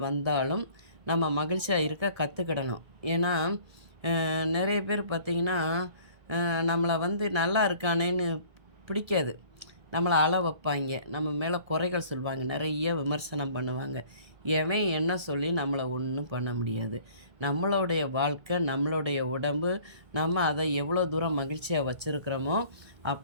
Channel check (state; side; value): late; left; 1.7 ms